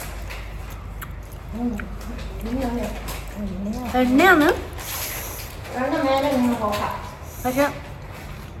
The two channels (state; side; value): identical; both; correlation 1.00